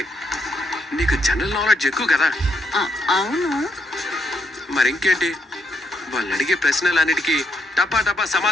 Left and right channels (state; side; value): normal; both; correlation 0.76